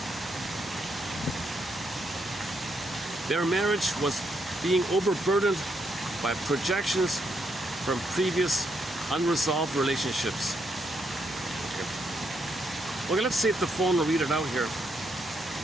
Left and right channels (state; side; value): normal; both; correlation 0.77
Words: Their marriage was being overburdened by projections from previous unresolved relationships. Okay, let's see if the phone will read it out here.